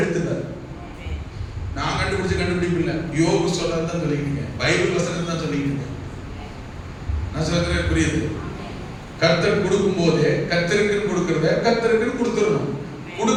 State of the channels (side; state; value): both; identical; correlation 1.00